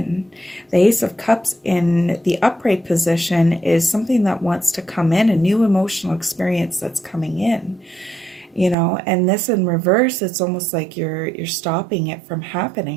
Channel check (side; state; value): left; drops out; at 8.8 s